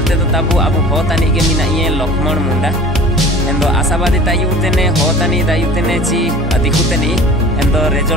तो ताबु अबु होतानी के मिना ये लक्ष्मण मुंडा एंदो आशावादी तायुतेने होतानी दायुतेने ची दिखुतेनी एंदो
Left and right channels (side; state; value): both; normal; correlation 0.43